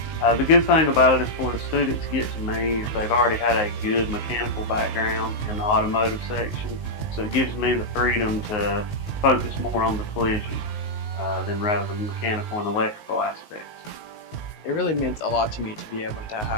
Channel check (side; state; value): right; late; 19 ms